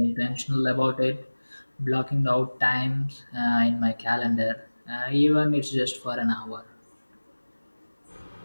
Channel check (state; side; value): inverted; both; correlation -1.00